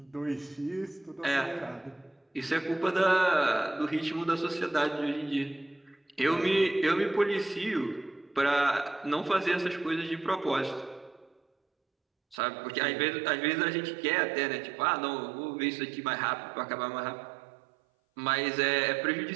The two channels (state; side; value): drops out; left; at 12.4 s